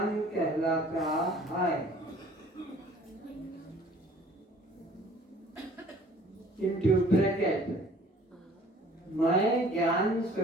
कहलाता है। इनटू ब्रैकेट, मैं ज्ञान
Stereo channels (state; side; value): normal; both; correlation 0.53